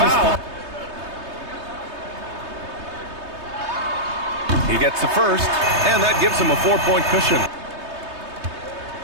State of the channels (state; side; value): late; left; 3.2 ms